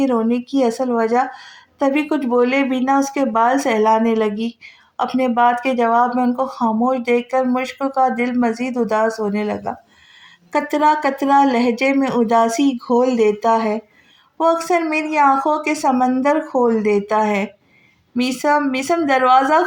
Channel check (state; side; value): identical; both; correlation 1.00